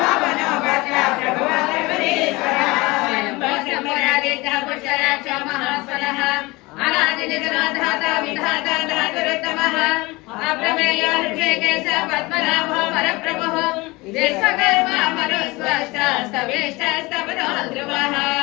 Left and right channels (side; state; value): right; quieter; 22.9 dB